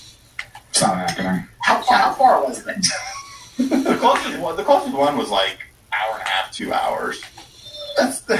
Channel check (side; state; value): both; identical; correlation 1.00